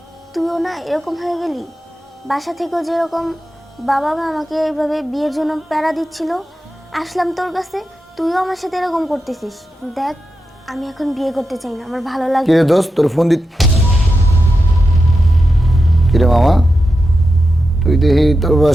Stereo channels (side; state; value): both; normal; correlation 0.89